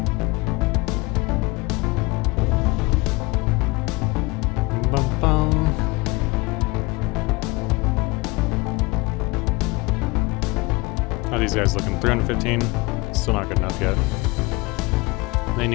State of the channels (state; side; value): quieter; right; 24.5 dB